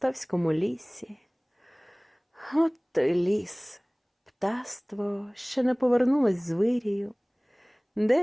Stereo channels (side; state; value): both; identical; correlation 1.00